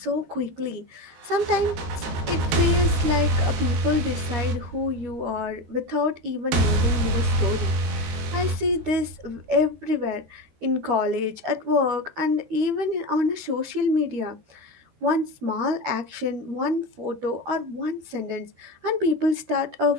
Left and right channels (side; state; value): left; late; 13 ms